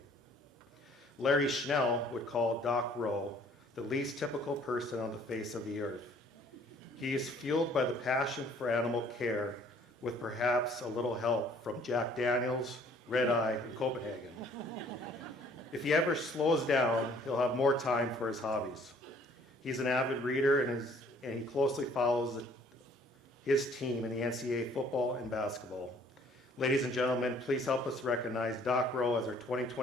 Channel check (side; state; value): both; normal; correlation 0.58